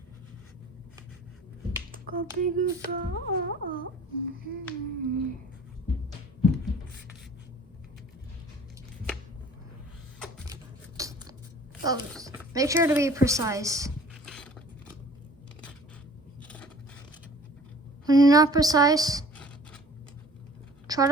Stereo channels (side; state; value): both; normal; correlation 0.49